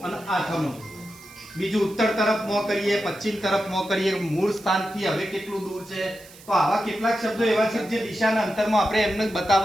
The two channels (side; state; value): right; noise; hiss, 21 dB below the sound